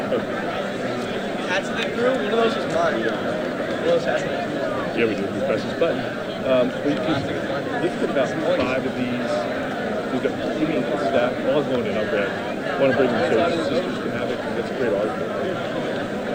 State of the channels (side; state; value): both; identical; correlation 1.00